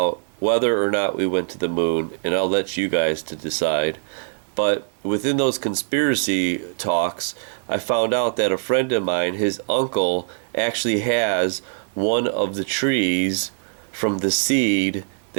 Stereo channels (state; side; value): silent; left; digital silence